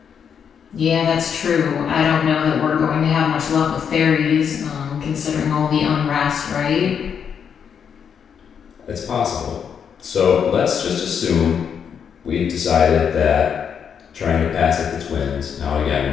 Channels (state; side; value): quieter; right; 7.4 dB